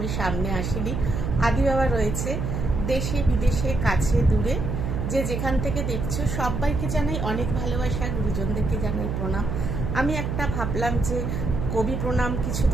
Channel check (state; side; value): noise; right; hum, 2 dB below the sound